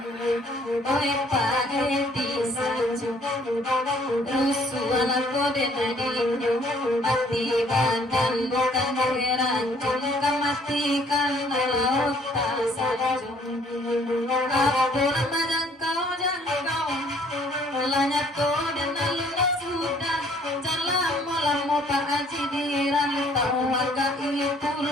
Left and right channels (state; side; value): normal; both; correlation 0.60